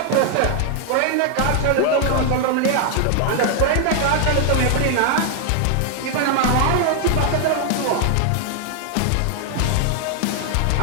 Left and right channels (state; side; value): different; both; correlation 0.00